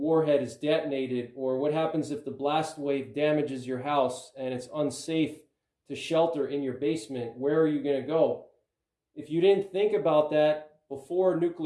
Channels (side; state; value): both; identical; correlation 1.00